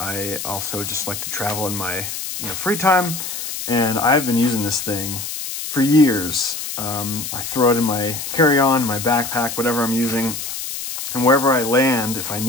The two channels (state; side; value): noise; left; hiss, 6 dB below the sound